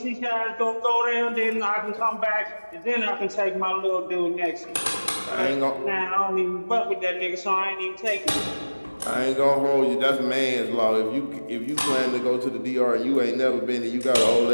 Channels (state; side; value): inverted; both; correlation -1.00